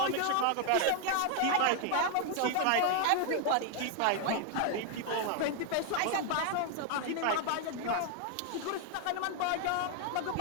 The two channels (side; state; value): both; different; correlation 0.00